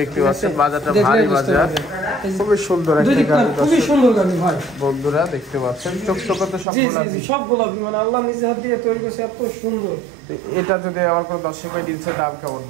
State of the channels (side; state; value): left; drops out; at 6.7 s